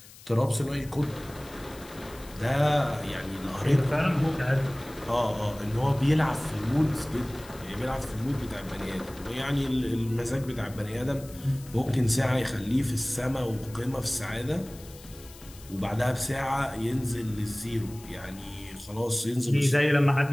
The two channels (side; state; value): left; noise; hiss, 20 dB below the sound